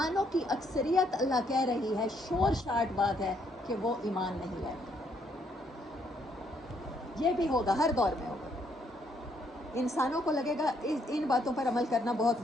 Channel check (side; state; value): both; normal; correlation 0.71